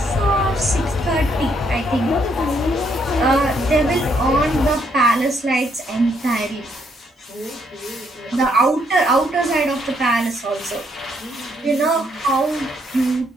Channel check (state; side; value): normal; both; correlation 0.72